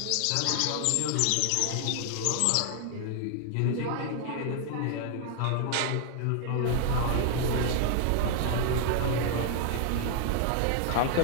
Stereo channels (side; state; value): both; different; correlation 0.00